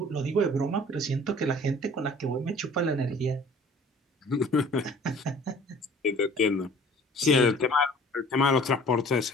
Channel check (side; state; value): both; normal; correlation 0.50